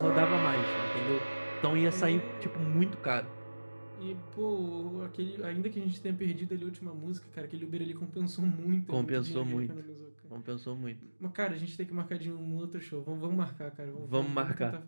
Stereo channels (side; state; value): both; inverted; correlation -1.00